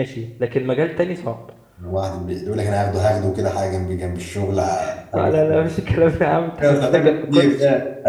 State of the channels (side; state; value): both; identical; correlation 1.00